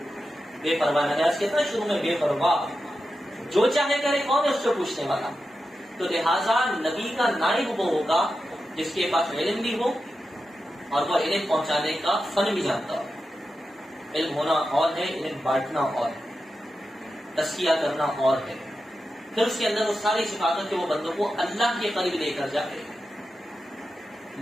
بے پرواہ نہ کہتا شروع میں بے پرواہ، جو چاہے کرے، کون ہے اس سے پوچھنے والا؟ تو لہٰذا نبی کا نائب وہ ہوگا جس کے پاس علم بھی ہو اور وہ علم پہنچانے کا فن بھی جانتا ہو۔ علم ہونا اور ہے، علم بانٹنا اور ہے، تزکیہ کرنا اور ہے، پھر اس کے اندر وہ ساری صفات کے وہ بندوں کو اللہ کے قریب لے کر جائے۔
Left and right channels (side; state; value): both; normal; correlation 0.90